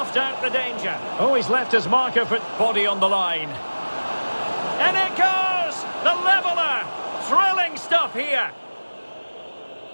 out the danger. Oh, he's left his marker for body on the line. And it goes! The leveller! Thrilling stuff here.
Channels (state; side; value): inverted; both; correlation -1.00